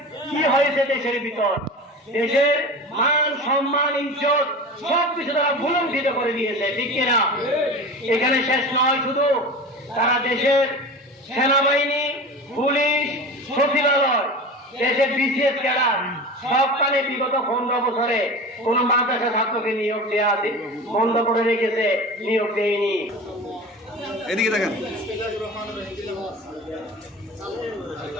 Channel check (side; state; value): both; normal; correlation 0.32